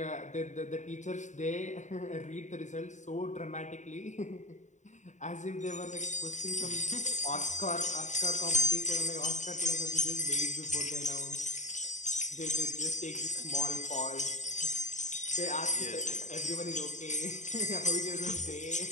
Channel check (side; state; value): right; late; 0.35 ms